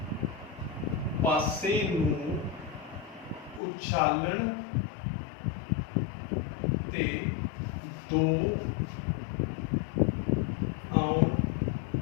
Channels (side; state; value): right; drops out; at 3.6 s